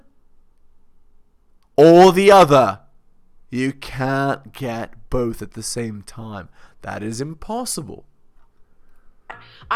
or the other. You can't get both at the same time. That is impossible.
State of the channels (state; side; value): identical; both; correlation 1.00